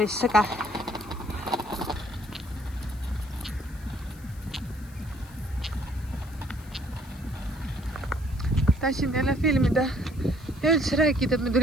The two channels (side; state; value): left; noise; hiss, 24 dB below the sound